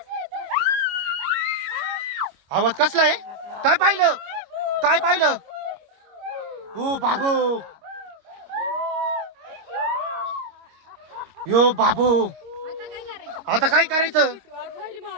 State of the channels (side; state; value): left; late; 26 ms